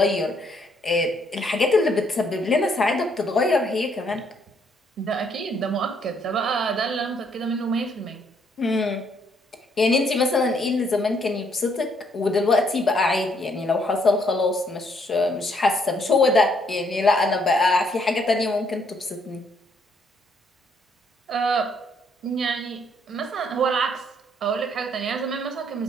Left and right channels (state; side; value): normal; both; correlation 0.69